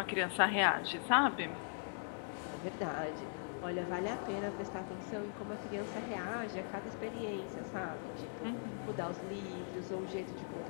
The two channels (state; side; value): silent; right; digital silence